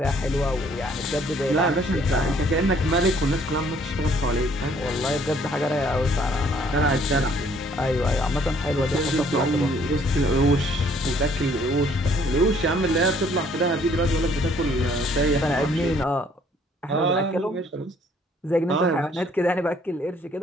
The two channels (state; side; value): normal; both; correlation 0.62